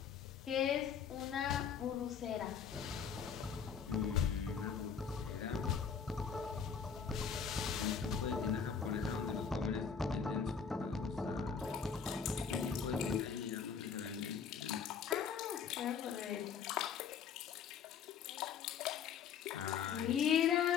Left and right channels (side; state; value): right; quieter; 6.9 dB